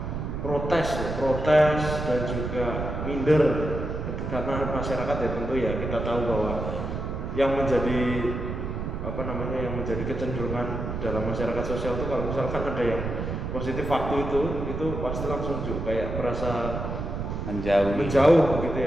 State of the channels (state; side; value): noise; right; rumble, 4 dB below the sound